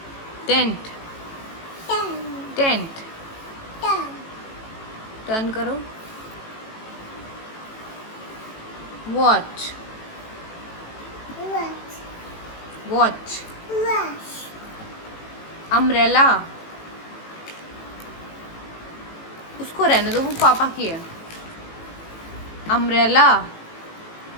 tent tent, turn करो, वॉच वॉच, अम्ब्रेला, उसको रहने दो, वो पापा की है। अम्ब्रेला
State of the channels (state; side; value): late; right; 18 ms